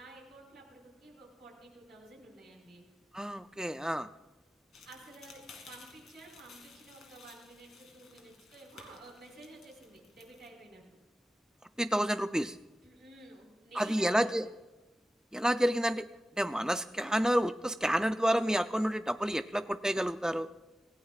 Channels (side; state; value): both; normal; correlation 0.95